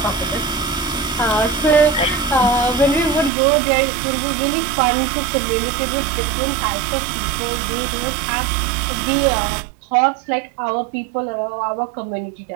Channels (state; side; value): drops out; left; at 3.3 s